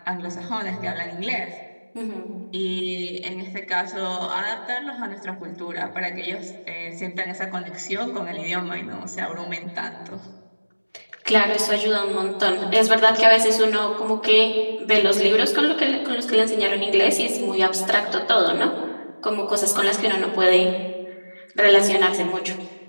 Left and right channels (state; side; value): inverted; both; correlation -1.00